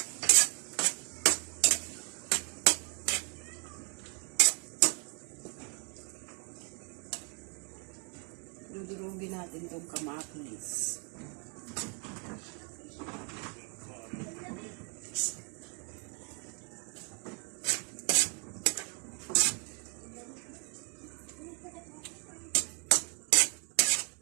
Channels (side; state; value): left; quieter; 36.8 dB